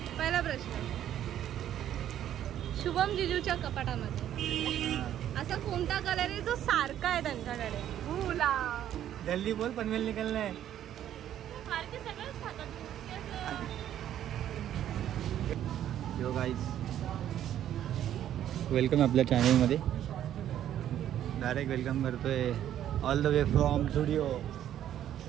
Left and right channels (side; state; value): left; quieter; 11.1 dB